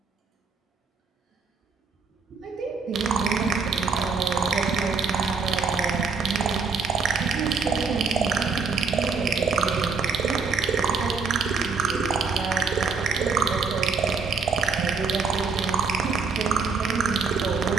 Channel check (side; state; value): left; quieter; 5.3 dB